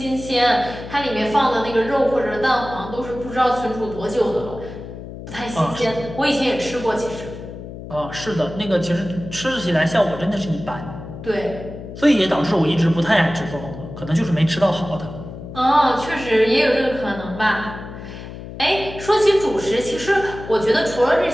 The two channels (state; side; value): noise; left; hum, 12 dB below the sound